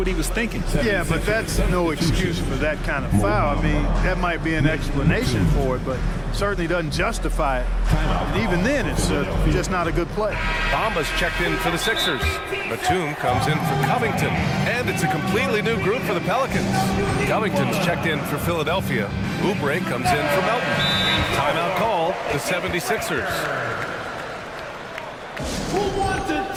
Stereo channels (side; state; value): both; identical; correlation 1.00